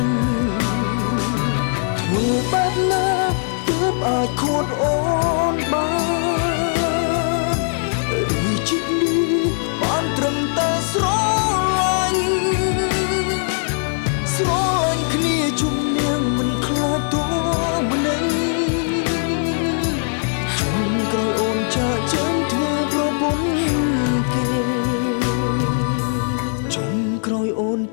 ញធ្វើបែបណាទើបអាចខួតអូនបានឬជិតនេះបានត្រឹមតែស្រឡាញ់គ្នាជំនះមិនខ្លាចតួម្នេញជុំក្រោយអូនចាកចេញធ្វើប្រពន្ធគេក្រោយអូន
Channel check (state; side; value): silent; right; 58 dB below the other